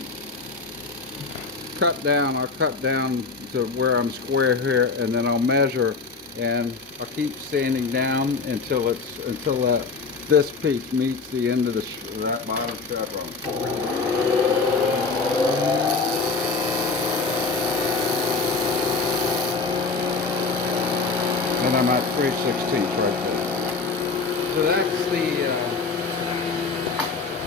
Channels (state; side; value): quieter; right; 4.3 dB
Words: cut down, I'll cut down to where I'm square here, and then I'll measure, and I'll keep sanding down until this piece meets the end of that bottom chevron. And I'm at 3/16 right there. So that's